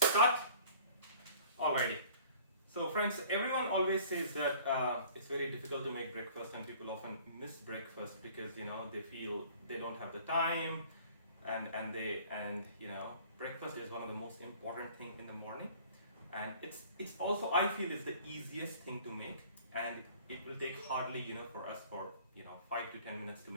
start? Alrighty. So friends, everyone always says that it's very difficult to make breakfast, and people often miss breakfast because they feel they don't have the time, and breakfast is one of the most important thing in the morning, and it's also, I feel, it's the easiest thing to make, and it will take hardly for us for 5 to 10 minutes to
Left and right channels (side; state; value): both; inverted; correlation -0.50